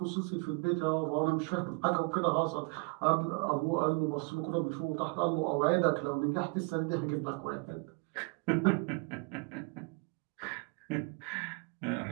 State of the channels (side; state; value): left; quieter; 31.4 dB